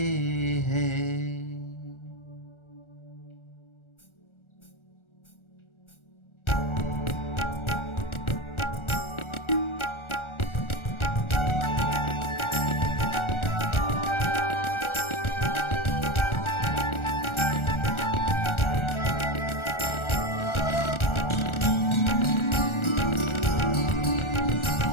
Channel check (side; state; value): right; late; 1.4 ms